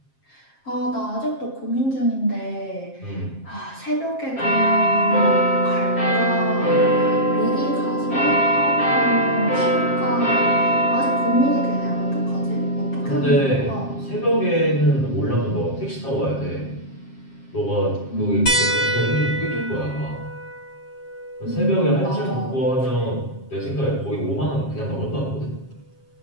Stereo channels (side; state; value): right; late; 7.5 ms